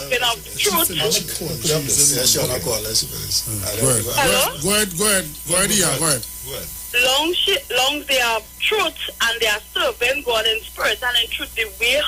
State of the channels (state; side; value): identical; both; correlation 1.00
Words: of truth. Hello? Go ahead, yeah, go ahead. Long they are truth and they are serving God in spirit and in truth, the way